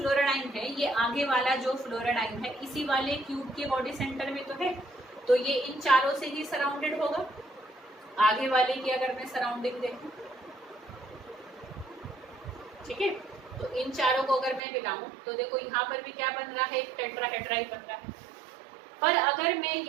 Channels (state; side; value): drops out; left; at 14.6 s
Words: है, ये आगे वाला जो फ्लोराडाइन है इसी वाले क्यूब के बॉडी सेंटर में तो है, तो ये इन चारों से ही सराउंडेड होगा। आगे वाले की अगर मैं सराउंडिंग देखूं, ठीक है, तो इन चारों को अगर मैं मिलाऊं तो देखो यहाँ पर भी क्या बन रहा है, एक टेट्राहेड्राई बन रहा है। पर अगर मैं